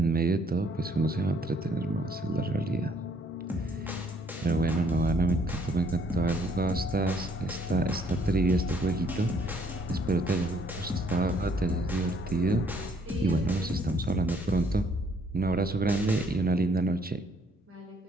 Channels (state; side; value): normal; both; correlation 0.65